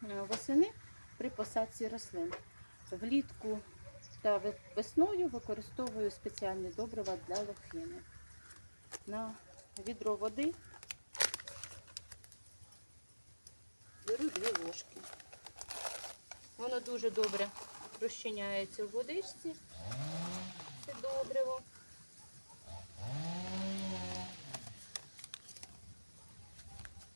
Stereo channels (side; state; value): both; inverted; correlation -1.00